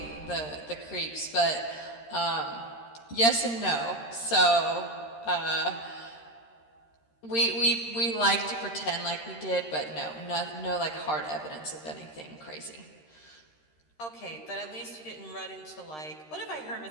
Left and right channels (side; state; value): right; late; 13 ms